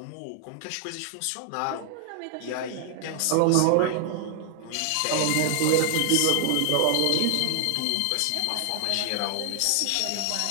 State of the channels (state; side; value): different; both; correlation 0.00